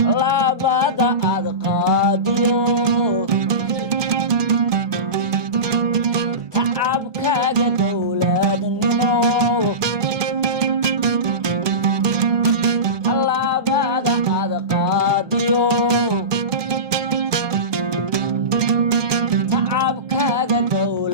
labada ad qaadiyo tacabkaaga dowladnimo labada ad qaadiyo tacabkaaga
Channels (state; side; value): late; left; 1.2 ms